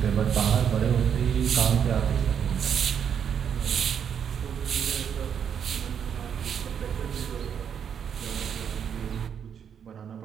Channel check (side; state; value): left; quieter; 8.0 dB